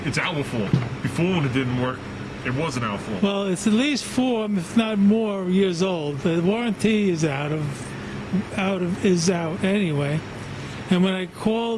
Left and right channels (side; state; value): both; identical; correlation 1.00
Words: it's our fault. Before, when it didn't work, it wasn't our fault. Well, it's at least 4, if not more, years old. The warranty is out anyway. And when I